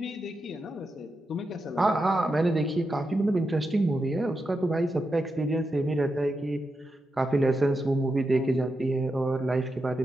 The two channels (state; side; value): normal; both; correlation 0.87